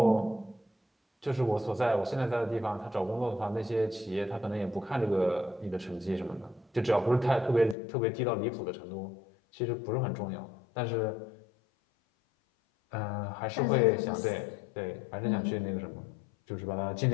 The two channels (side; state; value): right; drops out; at 7.8 s